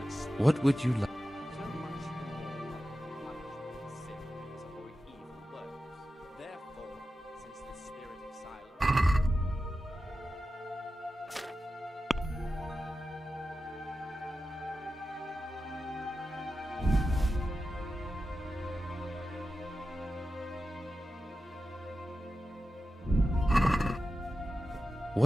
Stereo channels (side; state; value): both; normal; correlation 0.92